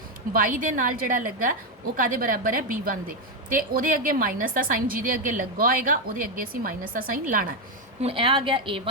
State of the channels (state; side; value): normal; both; correlation 0.05